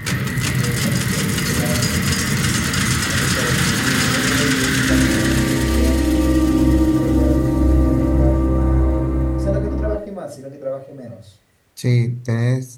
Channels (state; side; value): identical; both; correlation 1.00